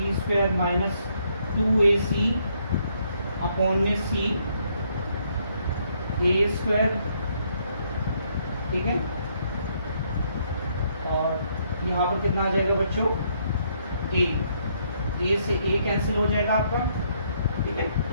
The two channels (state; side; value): inverted; both; correlation -0.71